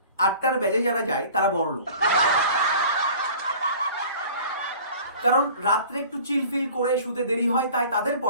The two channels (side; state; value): both; inverted; correlation -0.45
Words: 8টার ব্যাচে যারা যায় তারা বড় লোক, কারণ রাত্রে একটু চিলফিল করে শুতে দেরি হয়, তাই তাদের